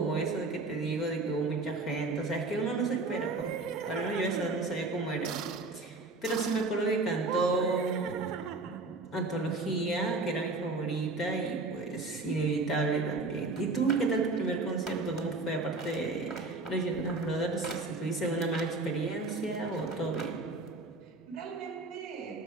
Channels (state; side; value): quieter; left; 3.4 dB